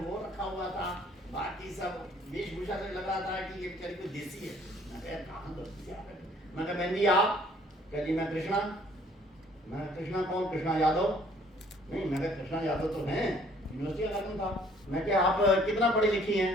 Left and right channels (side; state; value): both; normal; correlation 0.59